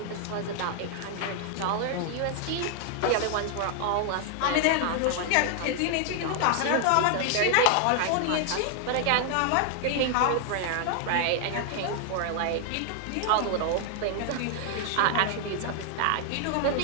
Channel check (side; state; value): both; different; correlation 0.00